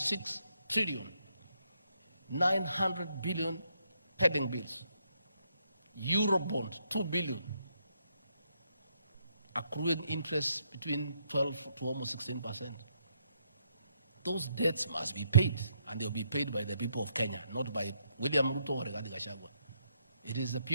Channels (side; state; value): both; inverted; correlation -0.75